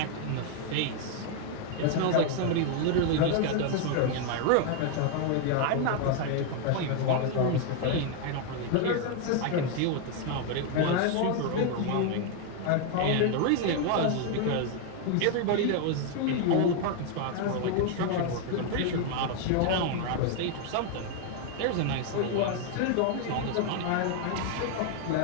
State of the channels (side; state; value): both; different; correlation 0.00